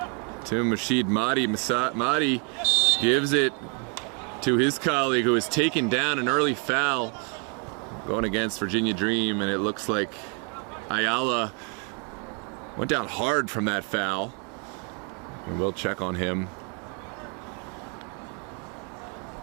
to Mashid Mahdi. Mahdi gives it to his colleague who has taken down an early foul going against Virginia Dream, and it looks like Ayala went down hard from that foul. And we'll check on him.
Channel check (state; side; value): quieter; left; 37.3 dB